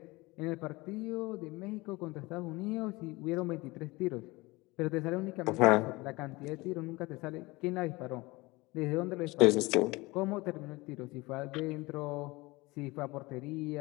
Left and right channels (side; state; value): right; quieter; 22.6 dB